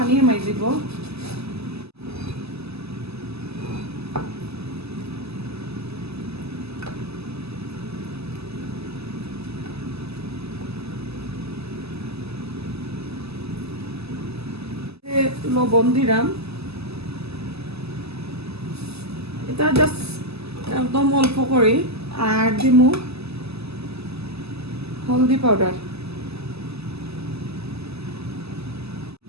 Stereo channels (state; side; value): late; left; 0.79 ms